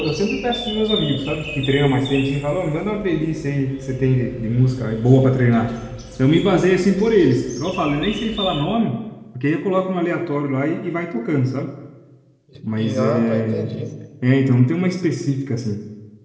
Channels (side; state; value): both; identical; correlation 1.00